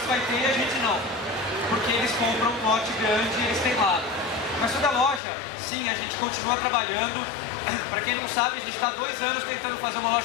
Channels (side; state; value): right; drops out; at 5.2 s